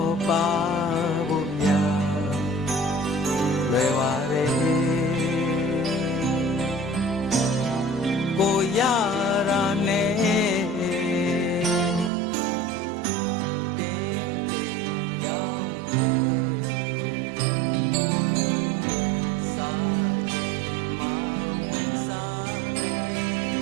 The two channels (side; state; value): left; drops out; at 12.1 s